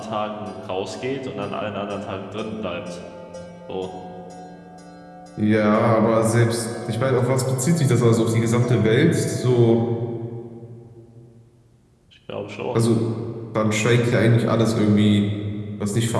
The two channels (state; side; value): identical; both; correlation 1.00